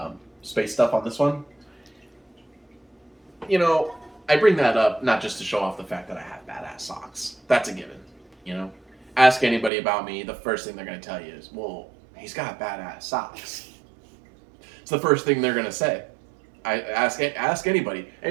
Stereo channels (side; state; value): left; drops out; at 9.7 s